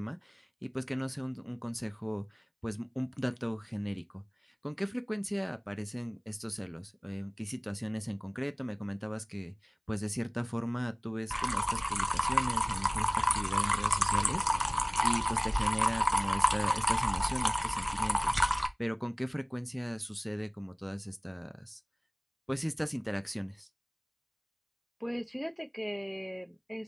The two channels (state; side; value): identical; both; correlation 1.00